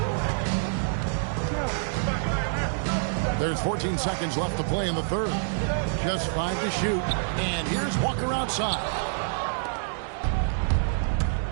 There's 14 seconds left to play in the third. Just 5 to shoot. And here's Walker outside.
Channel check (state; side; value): silent; left; digital silence